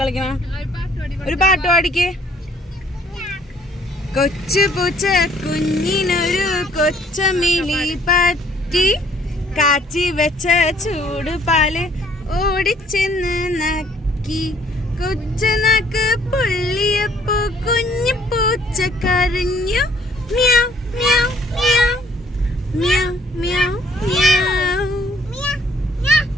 ഒരു പാട്ട് പാടിക്ക്. കൊച്ചു പൂച്ച കുഞ്ഞിനൊരു കൊച്ചമിലി പറ്റി കാച്ചി വെച്ച ചൂട് പാല് ഓടിച്ചെന്ന് നക്കി. കൊച്ചു നാക്ക് പൊള്ളിയപ്പോ കുഞ്ഞു പൂച്ച കരഞ്ഞു. മ്യാവ് മ്യാവ് മ്യാവ് മ്യാവ് മ്യാവ് മ്യാവ്.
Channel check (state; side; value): normal; both; correlation 0.61